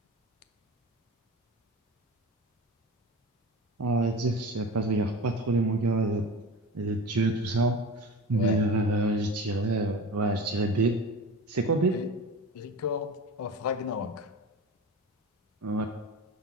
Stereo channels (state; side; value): normal; both; correlation 0.32